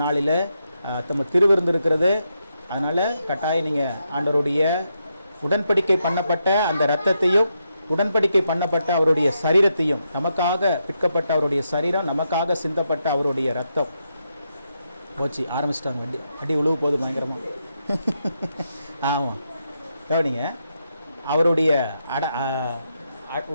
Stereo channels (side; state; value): both; inverted; correlation -0.83